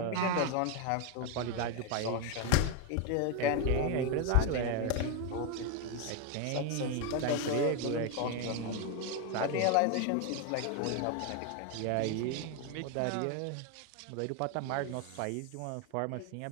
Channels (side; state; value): both; different; correlation 0.01